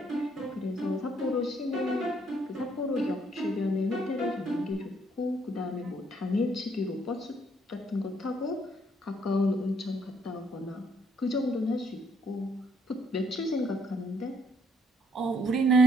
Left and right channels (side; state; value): both; normal; correlation 0.68